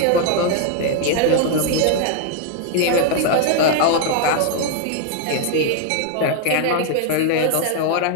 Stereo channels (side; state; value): both; different; correlation 0.00